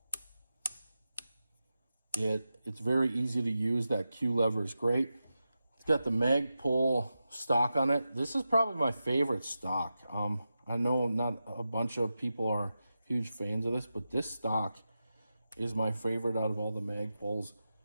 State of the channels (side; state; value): both; inverted; correlation -0.91